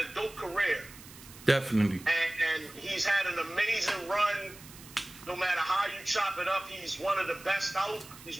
a dope career. Definitely. And he's had an amazing run. No matter how you chop it up, he's one of the best out. He's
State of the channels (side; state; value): right; noise; hiss, 18 dB below the sound